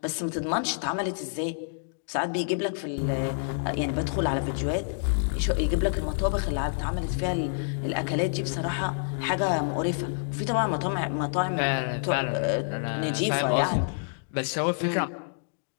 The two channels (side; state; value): right; silent; digital silence